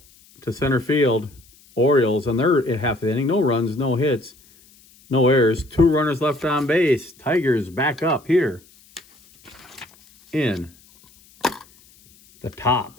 to center field. Orioles, and they're at half the inning. No runs, no hits, no errors. 2 runners left on base. Tigers back up here in the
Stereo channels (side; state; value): left; noise; hiss, 28 dB below the sound